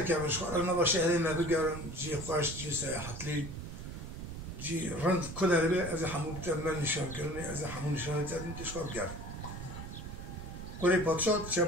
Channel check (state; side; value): noise; right; rumble, 9 dB below the sound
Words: کمرش خواه نبا شهری ما بگرم جی خوش جی سیاحتلی جی رند کدر به از همو بتمن نشان کرنه از همو نشانه تردیم تشخاب گرم کره پادشاه چه